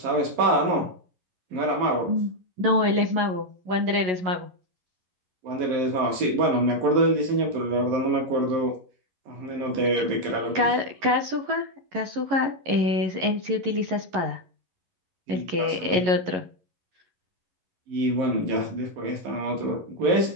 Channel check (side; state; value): left; late; 11 ms